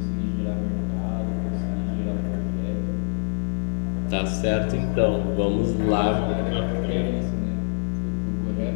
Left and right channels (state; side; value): silent; right; digital silence